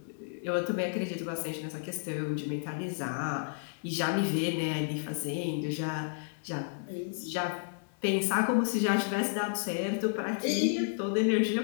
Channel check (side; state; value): right; silent; digital silence